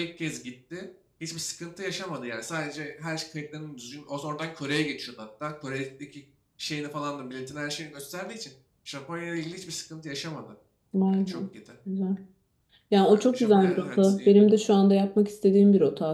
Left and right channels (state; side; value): identical; both; correlation 1.00